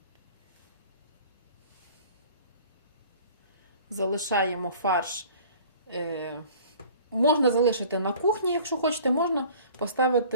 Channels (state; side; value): inverted; both; correlation -0.47